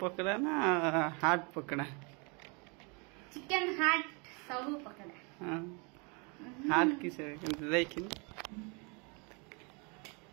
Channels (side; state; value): left; quieter; 32.3 dB